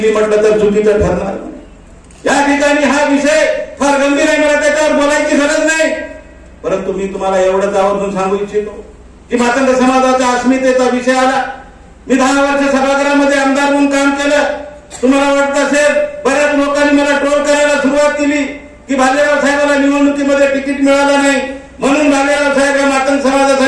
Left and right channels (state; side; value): identical; both; correlation 1.00